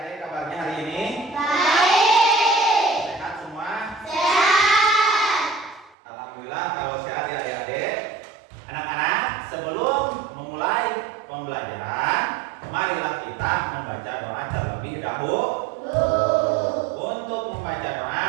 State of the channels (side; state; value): left; drops out; at 6.0 s